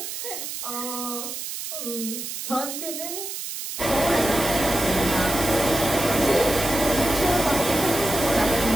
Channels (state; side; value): noise; right; hiss, 7 dB below the sound